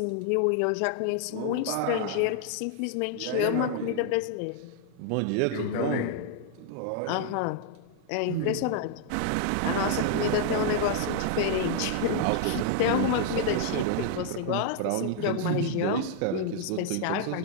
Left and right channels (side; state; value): both; different; correlation 0.00